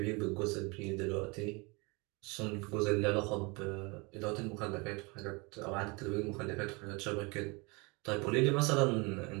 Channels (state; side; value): quieter; left; 28.0 dB